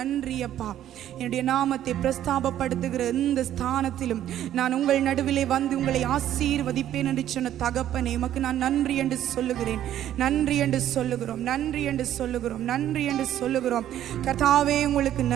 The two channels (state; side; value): quieter; left; 11.7 dB